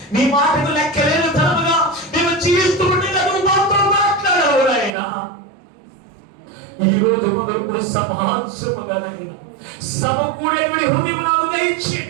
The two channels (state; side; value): drops out; left; at 4.9 s